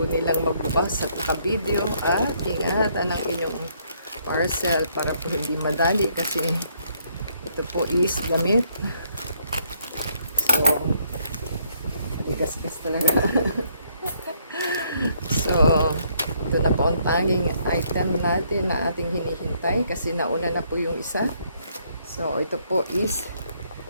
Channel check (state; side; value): inverted; both; correlation -0.69